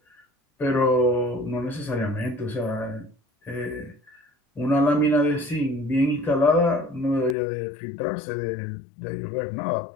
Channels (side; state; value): right; drops out; at 7.4 s